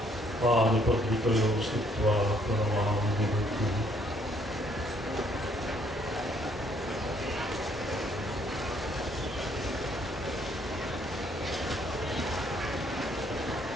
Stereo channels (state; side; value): normal; both; correlation 0.66